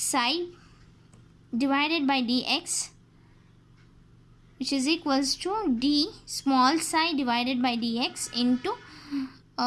divided by dx, which is equals to d small psi divided by dx into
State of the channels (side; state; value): both; identical; correlation 1.00